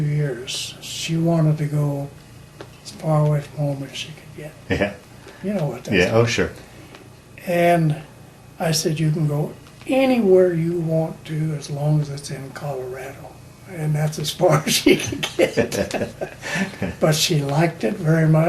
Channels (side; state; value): both; identical; correlation 1.00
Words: She wanted to go as far away from home as she could get. Yeah. You know what that's Yeah. like. Oh, sure. And I said, you can go anywhere you want to as long as it's in Colorado. And that's as far as she could get. But she liked it very